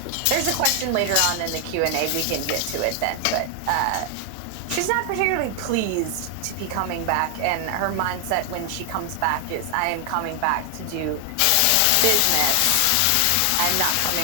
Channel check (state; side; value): different; both; correlation 0.00